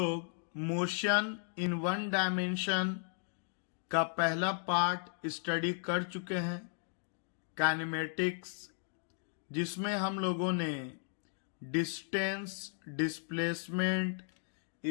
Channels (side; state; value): right; silent; 54 dB below the other